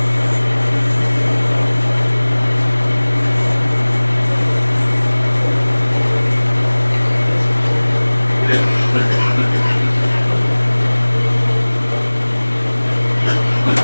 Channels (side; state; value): both; inverted; correlation -1.00